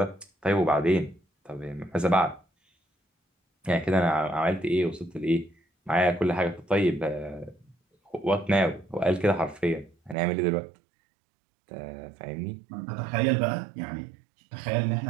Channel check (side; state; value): left; drops out; at 10.2 s